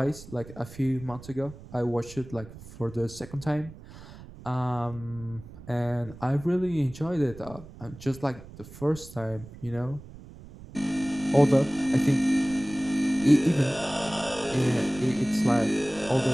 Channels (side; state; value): right; noise; rumble, 17 dB below the sound